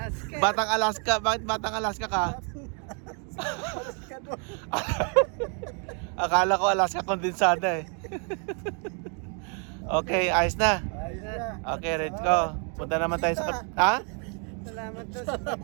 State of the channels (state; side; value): quieter; left; 38.9 dB